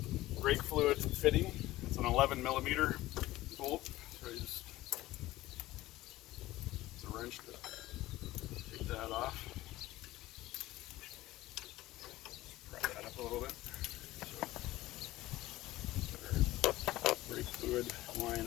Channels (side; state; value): right; quieter; 16.9 dB